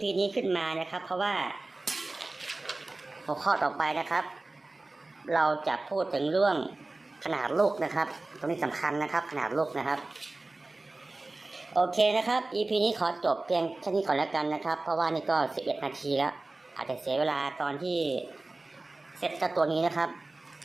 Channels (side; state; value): left; quieter; 3.1 dB